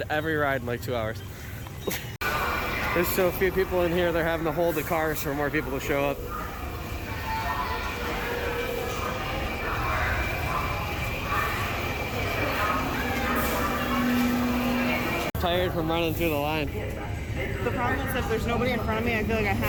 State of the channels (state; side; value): identical; both; correlation 1.00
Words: every ride in like 2 hours. There's so few people in here, they're having to hold the cars for more people to show up. Tired from running through the line. The problem is if there's nobody in front of me, I feel like I